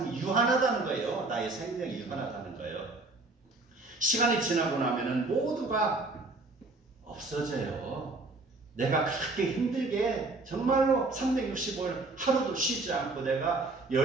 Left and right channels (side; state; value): left; quieter; 3.2 dB